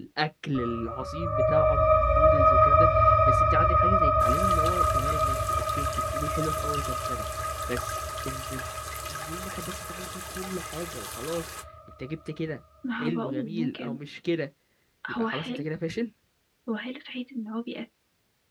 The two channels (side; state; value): both; identical; correlation 1.00